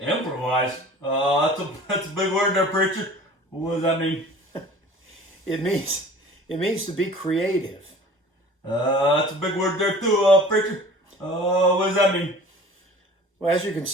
Improvise? That's a big word there, preacher. What does that mean? It means to be creative. That's a big word there too, preacher. What does that mean? Well, as you can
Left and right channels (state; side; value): normal; both; correlation 0.44